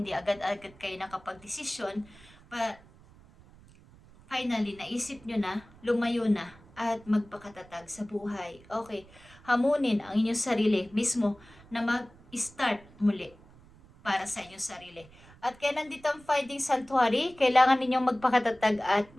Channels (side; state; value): right; noise; rumble, 24 dB below the sound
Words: agad-agad kayo nakapag-desisyon. But finally, naisip nyo na, lumayo na, at magpakatatag sa buhay. Okay, hamunin ang inyong sarili mismo na mag-start muli para sa inyong sarili. At kaya nandito ang Finding Sanctuary, kailangan ninyong magpakatatag at